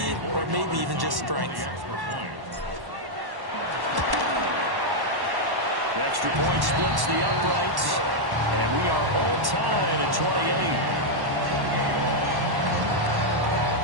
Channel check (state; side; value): late; left; 1.1 ms